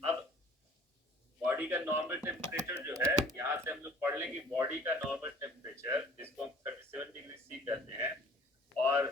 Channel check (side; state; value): both; normal; correlation 0.51